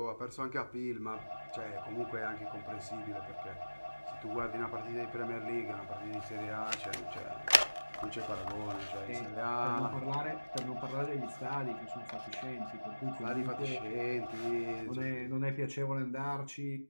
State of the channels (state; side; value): inverted; both; correlation -1.00